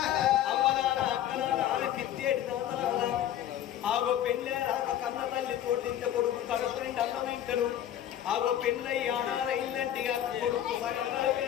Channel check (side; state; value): right; quieter; 11.3 dB